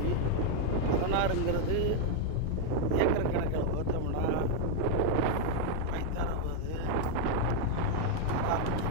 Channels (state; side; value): different; both; correlation 0.00